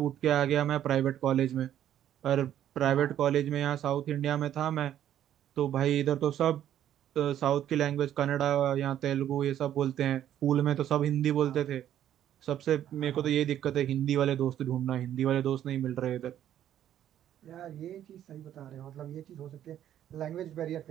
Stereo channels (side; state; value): left; quieter; 11.0 dB